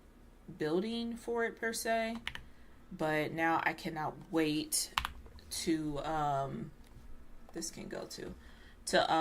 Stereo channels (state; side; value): identical; both; correlation 1.00